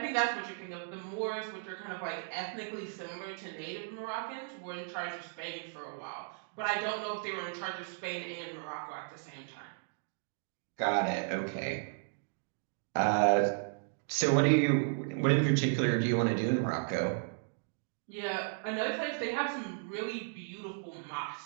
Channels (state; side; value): silent; left; digital silence